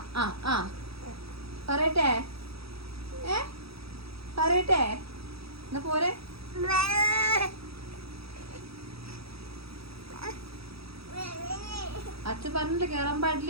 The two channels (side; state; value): left; late; 0.77 ms